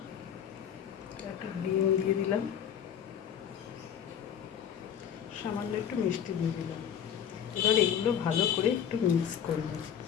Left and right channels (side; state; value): right; quieter; 8.8 dB